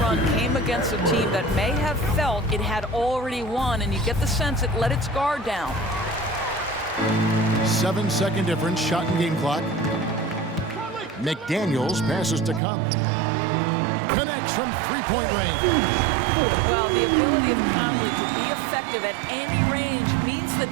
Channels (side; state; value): left; drops out; at 12.6 s